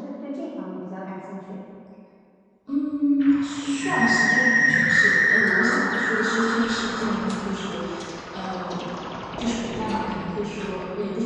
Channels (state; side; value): identical; both; correlation 1.00